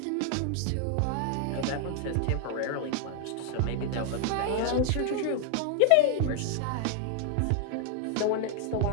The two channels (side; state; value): both; different; correlation 0.00